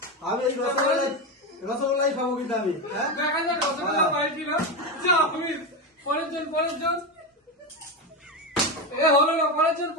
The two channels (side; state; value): both; normal; correlation 0.14